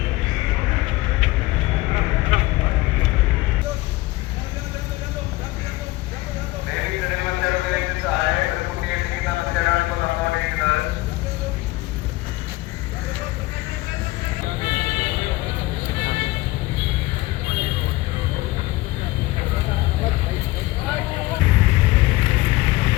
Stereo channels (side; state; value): right; quieter; 19.5 dB